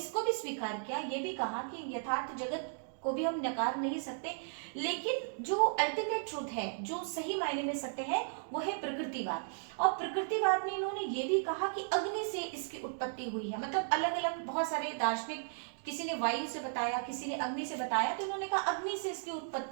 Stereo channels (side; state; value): left; silent; digital silence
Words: भी स्वीकार किया, ये भी कहा कि यथार्थ जगत को भी हम नकार नहीं सकते, लेकिन जो अल्टीमेट ट्रूथ है, जो सही मायने में सत्य है, वो है प्रकृतिवाद। और प्रकृतिवाद में इन्होंने ये भी कहा कि अग्नि से इसकी उत्पत्ति हुई है। मतलब अलग अलग बहुत सारे दार्शनिक, किसी ने वायु से बताया, किसी ने अग्नि से बताया, तो इन्होंने कहा अग्नि से इसकी